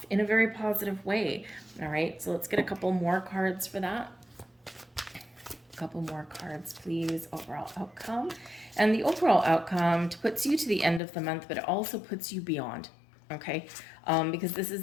in a very positive way. All right, so let's get a couple more cards for that. A couple more cards, please. Overall outcome. And the overall outcome puts you to the end of the month, but it also puts you beyond. Okay, because this is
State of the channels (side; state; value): right; drops out; at 11.0 s